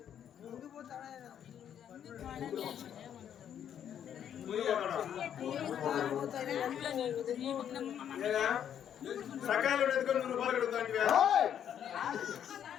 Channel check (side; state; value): right; quieter; 9.4 dB